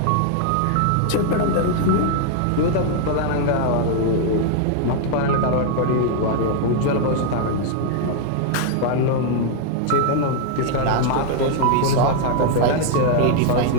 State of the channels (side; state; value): both; different; correlation 0.00